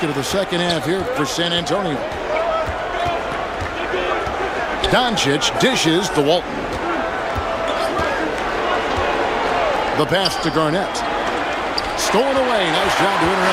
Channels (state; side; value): identical; both; correlation 1.00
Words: of the second half here for San Antonio. Doncic dishes to Walton. The pass to Garnett. Stolen away. Nice job to